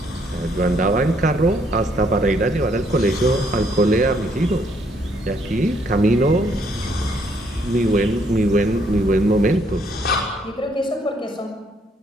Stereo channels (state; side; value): normal; both; correlation 0.69